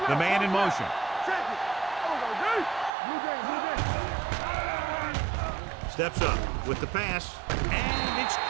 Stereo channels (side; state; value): left; drops out; at 2.9 s